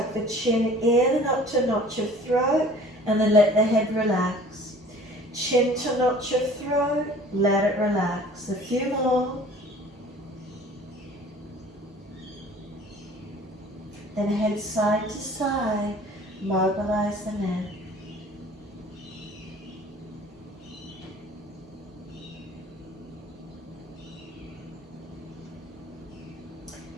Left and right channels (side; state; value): both; normal; correlation 0.48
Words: the chin in and up to notch your throat, and then let the head relax. Chin to notch your throat, let it relax. A few more. Then head side to side, mobilize the neck.